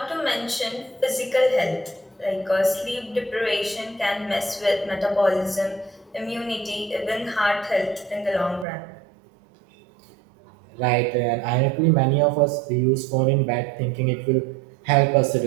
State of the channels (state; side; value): drops out; left; at 8.7 s